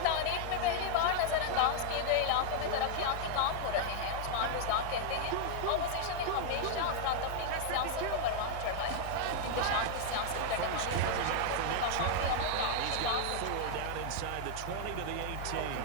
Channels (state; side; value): different; both; correlation 0.00